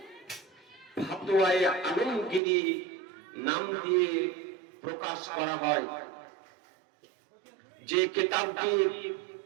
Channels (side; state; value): left; drops out; at 2.4 s